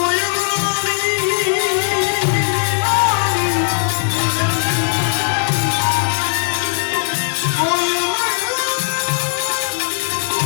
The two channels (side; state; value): right; silent; 58 dB below the other